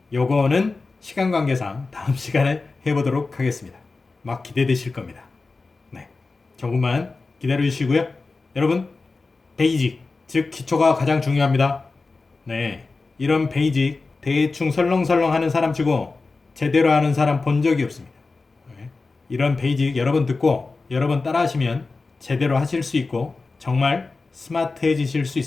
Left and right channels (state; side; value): quieter; right; 3.8 dB